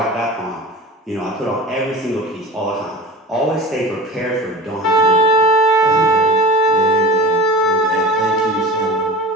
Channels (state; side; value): normal; both; correlation 0.34